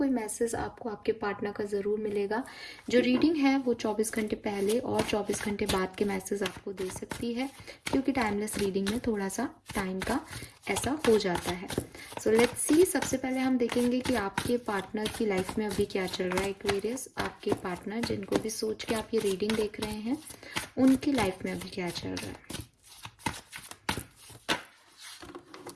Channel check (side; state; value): both; identical; correlation 1.00